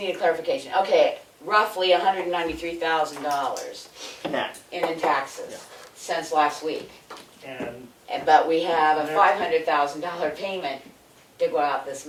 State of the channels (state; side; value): identical; both; correlation 1.00